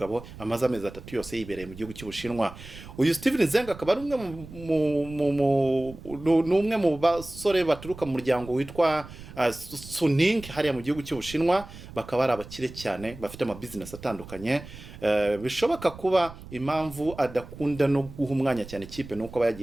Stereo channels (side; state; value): right; noise; rumble, 16 dB below the sound